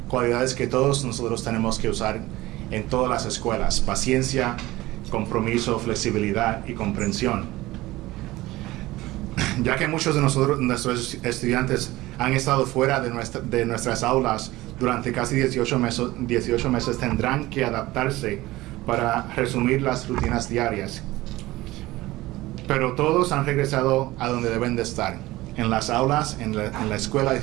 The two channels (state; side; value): quieter; left; 18.3 dB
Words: cualidades que todos nosotros tenemos que usar en todas las escuelas: paciencia, compromiso, flexibilidad y comprensión. Ya que muchos de nuestros estudiantes han estado fuera de nuestras aulas durante casi 18 meses, tendrán que adaptarse para resumir las rutinas diarias. Pero todos han regresado a donde deben de estar, en las aulas, en la escuela,